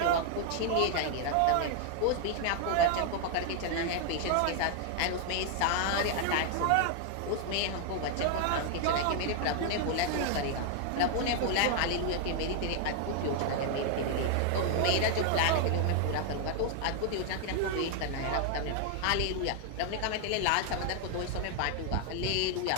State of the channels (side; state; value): both; different; correlation 0.00